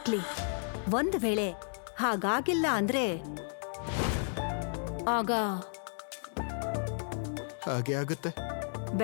ಒಂದ್ ವೇಳೆ ಹಾಗಾಗಿಲ್ಲ ಅಂದ್ರೆ ಆಗ ಹಾಗೆ ಆಗುತ್ತೆ.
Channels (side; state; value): right; silent; digital silence